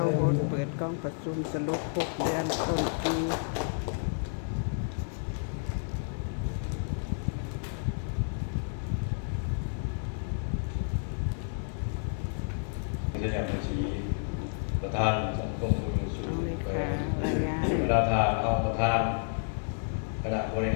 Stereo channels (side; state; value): right; silent; digital silence